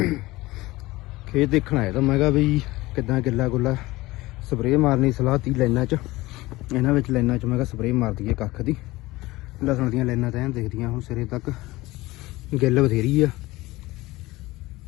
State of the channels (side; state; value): right; quieter; 19.6 dB